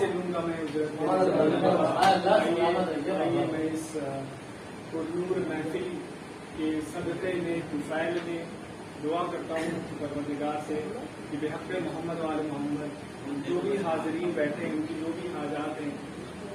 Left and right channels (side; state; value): both; identical; correlation 1.00